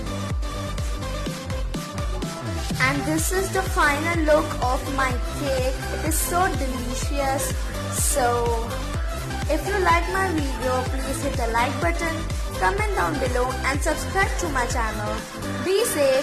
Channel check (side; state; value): both; identical; correlation 1.00